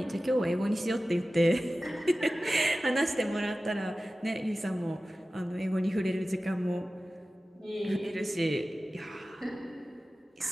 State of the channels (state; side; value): normal; both; correlation 0.96